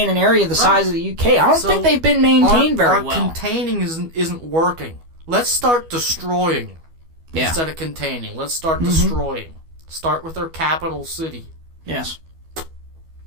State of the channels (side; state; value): left; late; 12 ms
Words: an area the size of the UK. I don't think they've been maintained very well. Containing isn't working. Let's start destroying instead of containing. Let's start destroying. Start with their capital city. Yes.